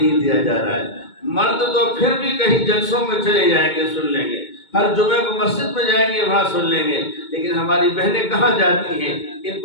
دیا جا رہا ہے۔ مرد تو پھر بھی کہیں جلسوں میں چلے جائیں گے، سن لیں گے، ہر جمعے کو مسجد میں جائیں گے وہاں سن لیں گے، لیکن ہماری بہنیں کہاں جاتی ہیں؟ ان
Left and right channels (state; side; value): late; right; 2.2 ms